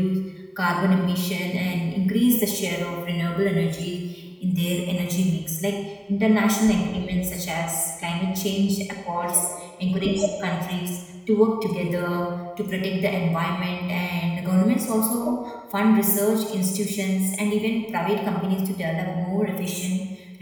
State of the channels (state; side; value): identical; both; correlation 1.00